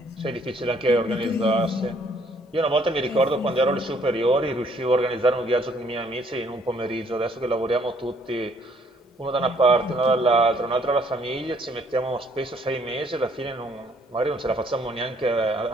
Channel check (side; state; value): both; normal; correlation 0.64